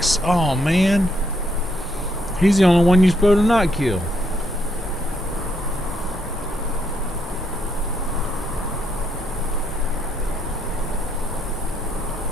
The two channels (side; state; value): both; normal; correlation 0.75